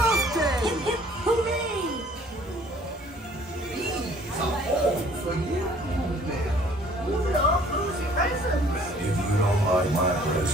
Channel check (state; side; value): normal; both; correlation 0.56